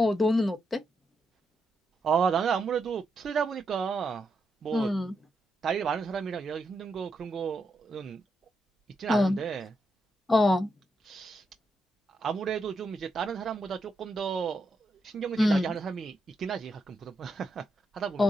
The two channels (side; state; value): both; normal; correlation 0.83